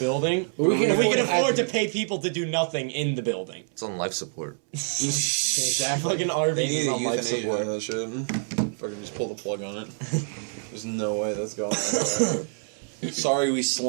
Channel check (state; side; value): silent; left; 61 dB below the other